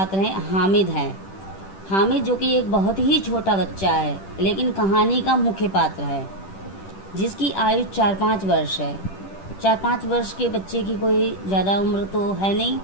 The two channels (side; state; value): right; late; 10 ms